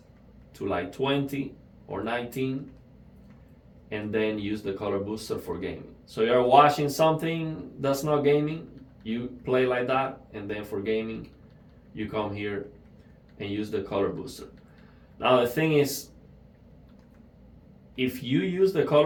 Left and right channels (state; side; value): identical; both; correlation 1.00